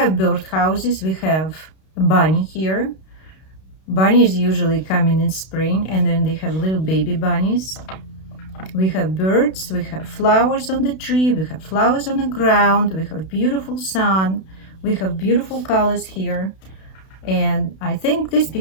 birdhouses. We have a bunny here. Bunnies usually coming in spring, and then they have little baby bunnies. We have birds. We have flowers on the tree. We have flowers on the ground. We have beautiful sun. We have beautiful colors here. And I think this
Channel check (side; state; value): right; late; 32 ms